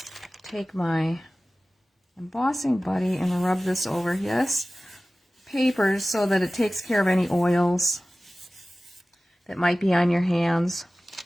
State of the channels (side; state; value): both; normal; correlation 0.97